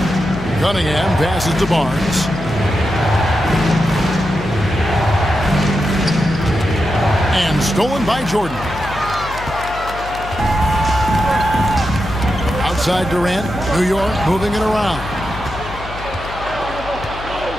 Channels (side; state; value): left; noise; hum, 12 dB below the sound